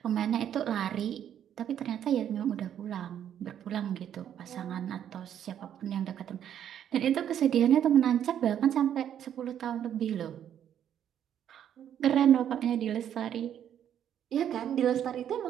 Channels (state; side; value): quieter; left; 9.8 dB